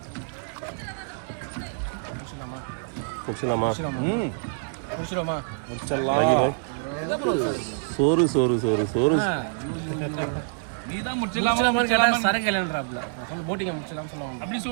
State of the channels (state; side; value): silent; left; digital silence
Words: முடிச்சலாமா? முடிச்சிடுவோமா? சோறு சோறு சோறு சோறு நீதான் முடிச்சலாமா? சரக்கு இல்லைன்றாப்ல. நான் சொல்லி போட்டிங்க முடிச்சலாம்னு சொல்லுவாங்க. அப்படி